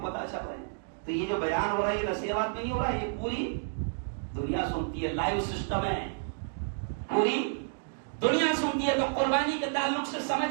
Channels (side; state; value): left; silent; digital silence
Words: پتہ چل رہے ہیں. تو یہ جو بیان ہو رہا ہے یہ نصیحت میں نہیں ہو رہا ہے، یہ پوری دنیا سنتی ہے، لائیو سسٹم ہے، پوری دنیا سنتی ہے. تو قربانی کے تعلق سے